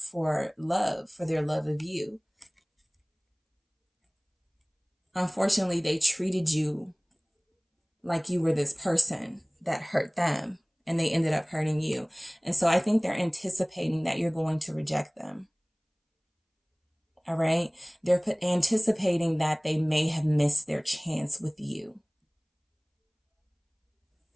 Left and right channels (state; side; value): identical; both; correlation 1.00